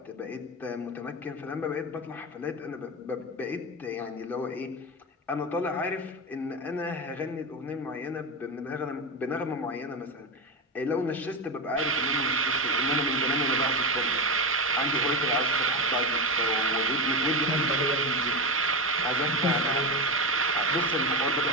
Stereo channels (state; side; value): normal; both; correlation 0.16